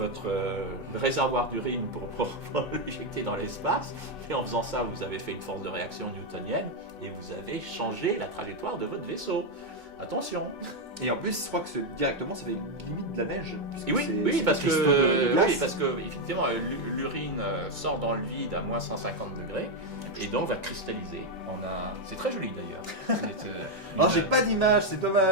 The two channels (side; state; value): both; normal; correlation 0.03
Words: réservoir d'urine pour l'éjecter dans l'espace. Et en faisant ça, vous avez fait une force de réaction newtonienne et vous avez changé la trajectoire de votre vaisseau. Attention. Et en plus, je crois que directement, ça fait limite de la neige. Oui, parce que effectivement, l'urine sort dans le vide à moins 150 degrés et donc va cristalliser. C'est très joli d'ailleurs. Alors, j'ai pas d'image, c'est